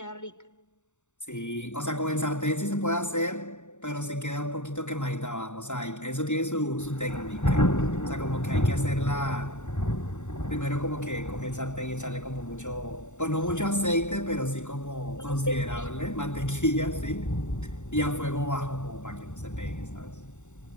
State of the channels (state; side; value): late; right; 0.84 ms